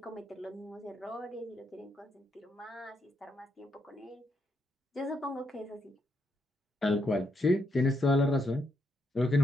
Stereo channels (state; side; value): normal; both; correlation 0.78